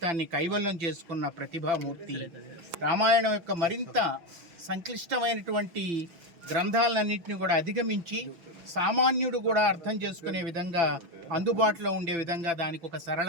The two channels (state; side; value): late; left; 5.9 ms